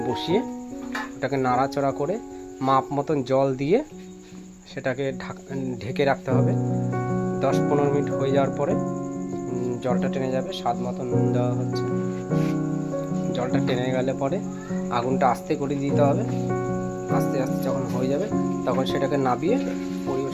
বসিয়ে ওটাকে নাড়াচড়া করে মাপ মতন জল দিয়ে সেটাকে ঢেকে রাখতে হবে। 10-15 মিনিট হয়ে যাওয়ার পরে জলটা টেনে যাবে, স্বাদ মতন নুন দেওয়া হচ্ছে। জলটা টেনে গেলে পরে আগুনটা আস্তে করে দিতে হবে। আস্তে আস্তে যখন হয়ে যাবে তখন সেটাকে নাবিয়ে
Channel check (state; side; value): identical; both; correlation 1.00